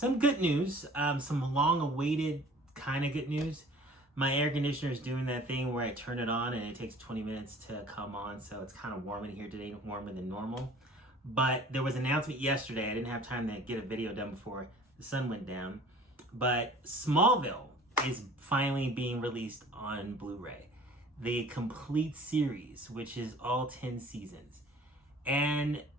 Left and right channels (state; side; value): normal; both; correlation 0.48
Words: good news, some long-awaited kind of good news. My air conditioner is doing that thing where I turn it on and it takes 20 minutes to come on, so it's kind of warm in here today, warmer than normal. But there was an announcement yesterday. I didn't have time to get a video done before the sun went down. But Smallville is finally being released on Blu-ray. The complete series, which is all 10 seasons. And